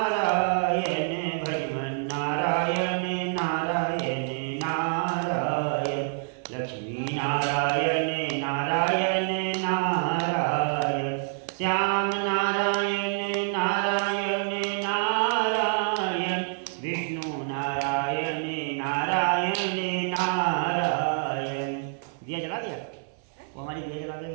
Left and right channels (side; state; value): left; silent; 60 dB below the other